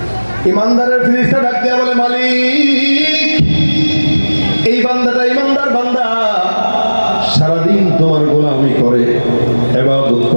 ইমানদারের ফেরেশতা ডাক দিয়া বলে, মালিক, এই বান্দাটা ইমানদার বান্দা, সারাদিন তোমার গোলামি করে, ইবাদত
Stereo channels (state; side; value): inverted; both; correlation -1.00